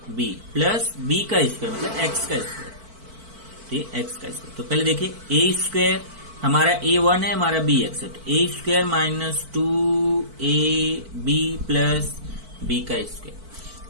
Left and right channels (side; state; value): left; late; 4.5 ms